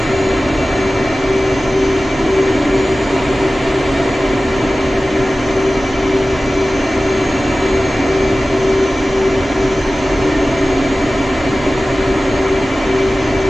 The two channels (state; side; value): normal; both; correlation 0.96